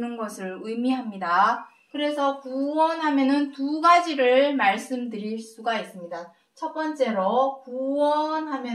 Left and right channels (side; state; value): both; identical; correlation 1.00